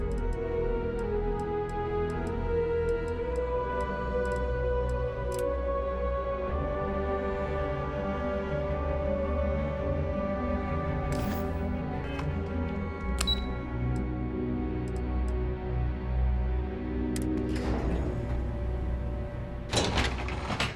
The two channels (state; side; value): identical; both; correlation 1.00